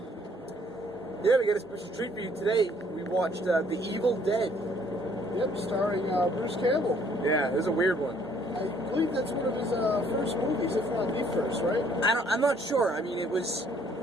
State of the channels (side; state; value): both; normal; correlation 0.62